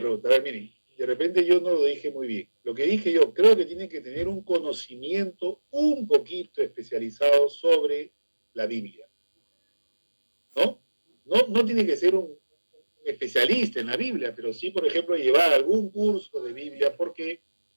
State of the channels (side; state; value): both; inverted; correlation -1.00